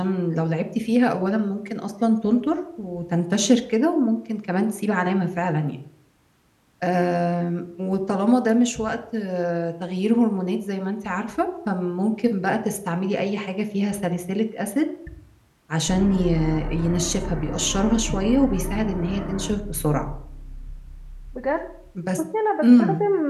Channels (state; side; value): identical; both; correlation 1.00